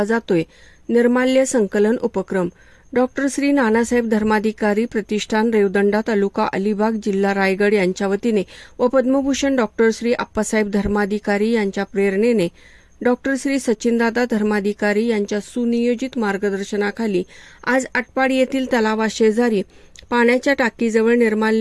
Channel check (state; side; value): identical; both; correlation 1.00